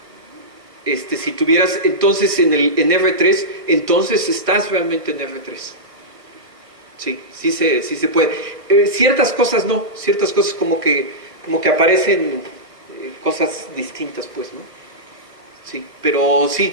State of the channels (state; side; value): late; left; 1.4 ms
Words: si tuvieras entonces en R3, entonces estás realmente en R3. Sí se puede. Ciertas cosas no, ciertas cosas como que aparecen cosas distintas, pues, ¿no? Sí, pero